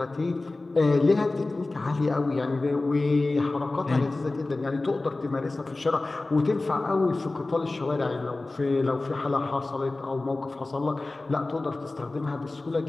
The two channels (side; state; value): right; quieter; 3.1 dB